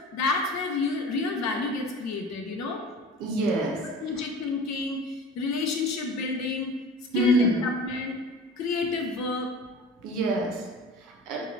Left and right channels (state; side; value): normal; both; correlation 0.38